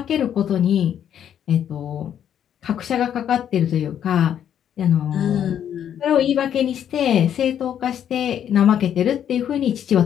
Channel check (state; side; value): quieter; right; 9.6 dB